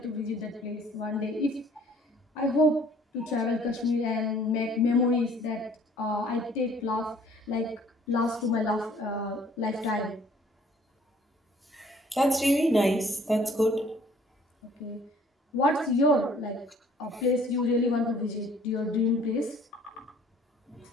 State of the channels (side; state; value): both; normal; correlation 0.56